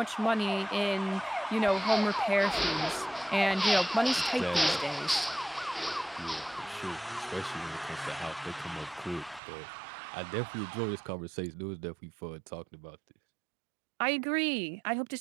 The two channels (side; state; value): left; drops out; at 9.4 s